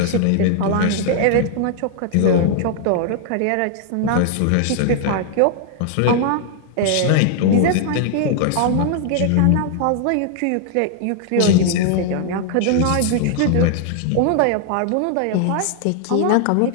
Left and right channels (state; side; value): different; both; correlation -0.01